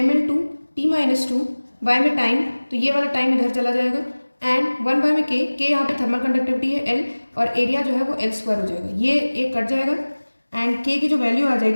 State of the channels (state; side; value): inverted; both; correlation -1.00